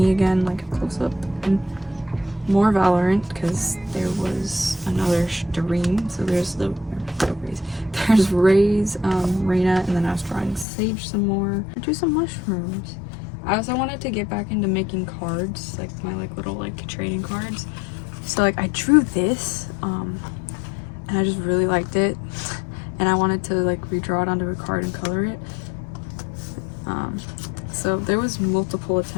again, like a close-up, and more Valorant because there was another stream. So there's there's Ray's, Reyna, and then I was drawing Sage some more. I drew some mushrooms. I also wanted to get back into making cards, like my like little like trading cards. So like I drew this, and I just really liked it, and I wanted to like redraw it onto a card and color it. So there was multiple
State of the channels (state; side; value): drops out; right; at 10.7 s